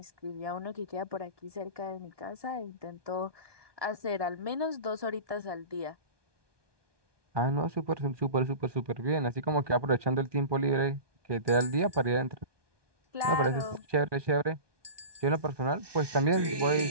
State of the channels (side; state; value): left; late; 1.2 ms